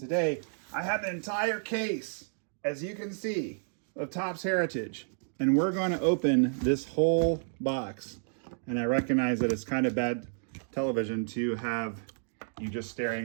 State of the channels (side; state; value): left; silent; digital silence